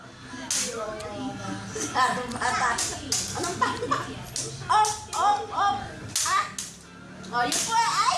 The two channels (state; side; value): identical; both; correlation 1.00